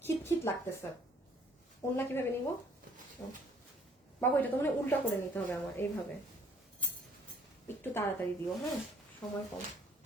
খিট লাগতেছে। অন্য কিভাবে নিব বাবু? এটা তো মানে উল্টা করে নিতে হবে আমার, এইভাবে। একটু তাড়াতাড়ি দিও, হ্যাঁ, সময় কম।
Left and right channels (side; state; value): both; normal; correlation 0.60